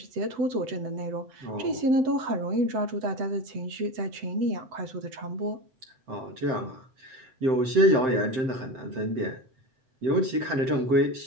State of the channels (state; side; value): late; left; 7.7 ms